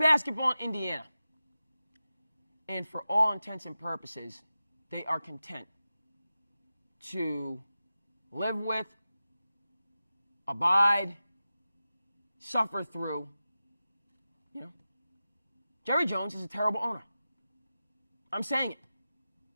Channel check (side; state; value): both; inverted; correlation -0.94